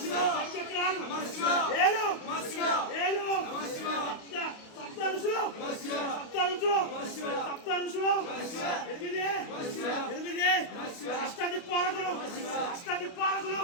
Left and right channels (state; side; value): late; right; 28 ms